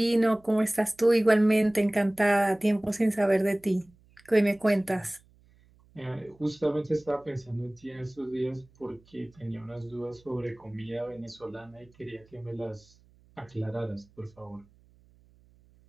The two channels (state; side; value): noise; right; hum, 30 dB below the sound